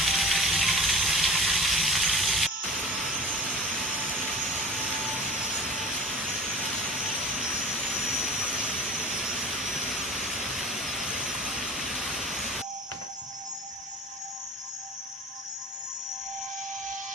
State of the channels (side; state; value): both; normal; correlation 0.40